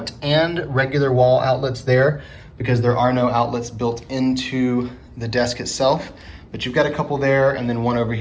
and regular wall outlets there because there are no outlets built into the desk itself. But you've got a couple there and then one over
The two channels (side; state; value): both; identical; correlation 1.00